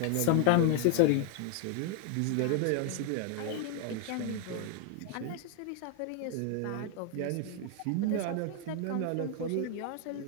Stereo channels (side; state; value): both; different; correlation 0.00